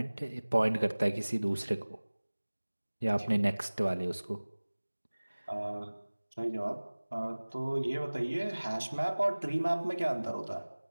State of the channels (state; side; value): inverted; both; correlation -1.00